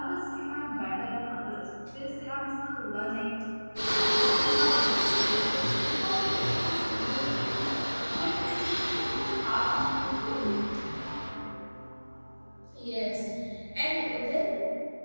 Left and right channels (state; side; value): inverted; both; correlation -1.00